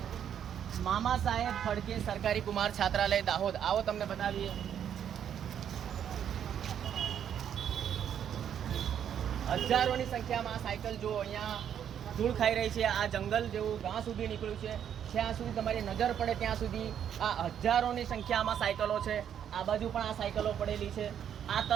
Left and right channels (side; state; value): left; quieter; 9.1 dB